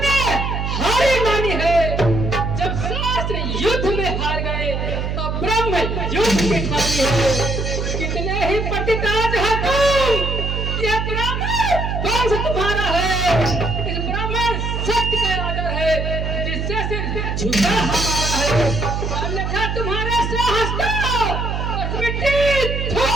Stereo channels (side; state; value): right; noise; hum, 2 dB below the sound